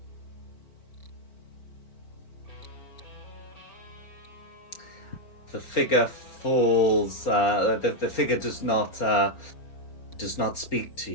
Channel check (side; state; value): right; late; 4.4 ms